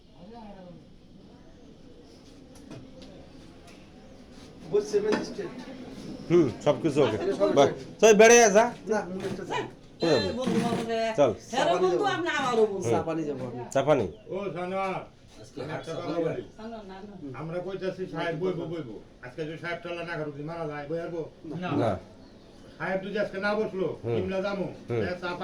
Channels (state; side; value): identical; both; correlation 1.00